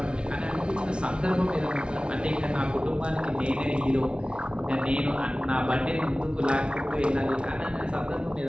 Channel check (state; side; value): late; left; 0.057 ms